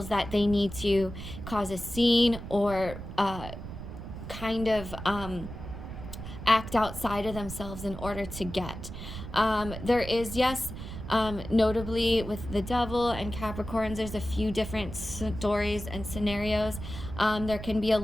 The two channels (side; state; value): right; noise; rumble, 10 dB below the sound